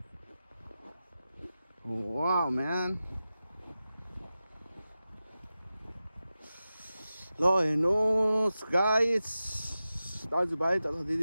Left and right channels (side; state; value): both; inverted; correlation -0.94